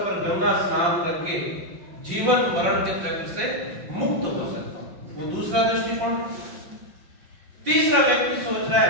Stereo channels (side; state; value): left; late; 5.6 ms